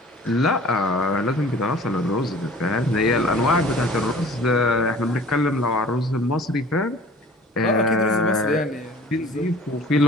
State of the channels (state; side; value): normal; both; correlation 0.46